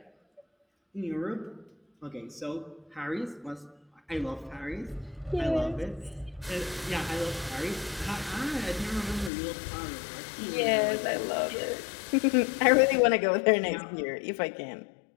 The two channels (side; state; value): right; drops out; at 9.3 s